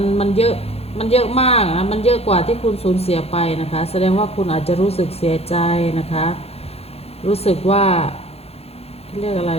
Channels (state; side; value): late; right; 0.29 ms